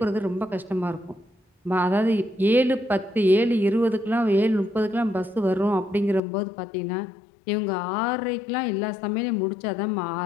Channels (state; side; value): drops out; right; at 6.2 s